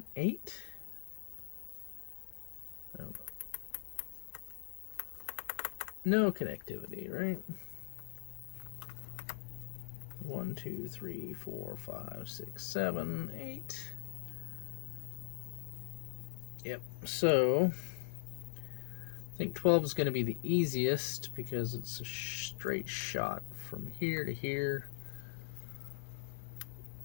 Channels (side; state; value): right; silent; digital silence